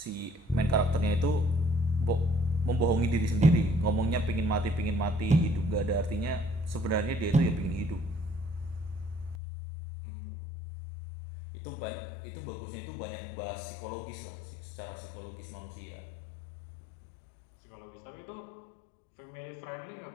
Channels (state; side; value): drops out; right; at 9.3 s